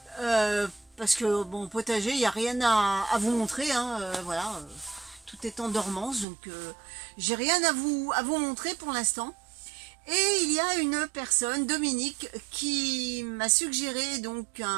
parce que bon, potager, il n'y a rien à vous montrer, hein, voilà, tout est en dormance, donc j'ai rien à vous montrer pour l'instant. Et il y a une personne, Dominique, qui m'a suggéré donc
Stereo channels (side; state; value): left; drops out; at 6.2 s